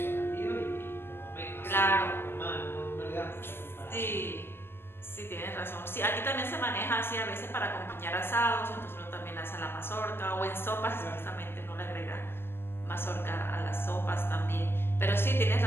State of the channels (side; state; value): right; late; 0.11 ms